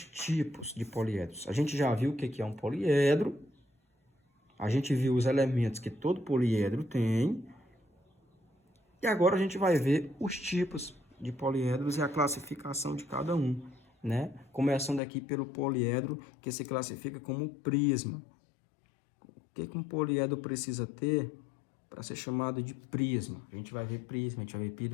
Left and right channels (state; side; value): drops out; right; at 15.0 s